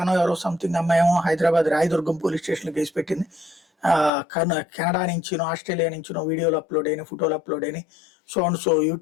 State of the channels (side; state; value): right; drops out; at 4.1 s